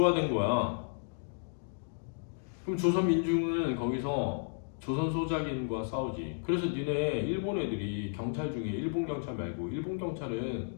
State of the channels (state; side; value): silent; right; digital silence